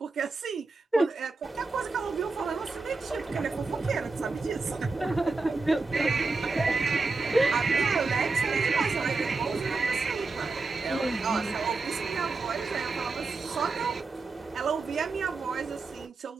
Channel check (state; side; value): quieter; left; 3.8 dB